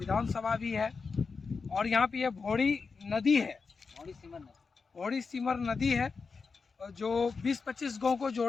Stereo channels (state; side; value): quieter; right; 4.8 dB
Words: भी है और यहाँ पे ये भोड़ी नदी है, भोड़ी सिमर नदी है जो 20-25 गांव को